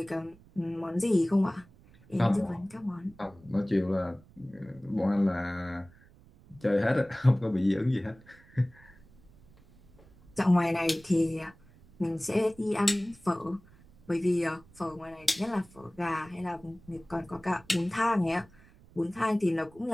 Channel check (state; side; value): noise; right; rumble, 26 dB below the sound